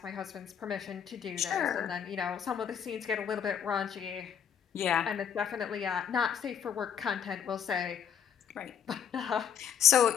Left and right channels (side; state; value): right; quieter; 8.2 dB